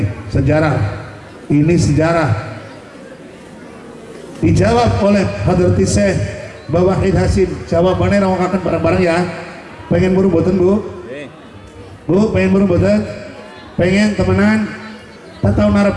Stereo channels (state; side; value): identical; both; correlation 1.00